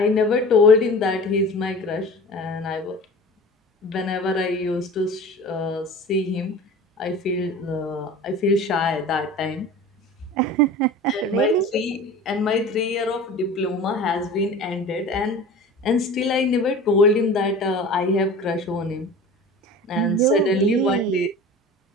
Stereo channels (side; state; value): both; normal; correlation 0.38